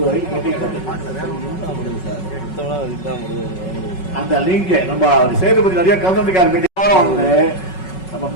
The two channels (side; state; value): right; late; 5.4 ms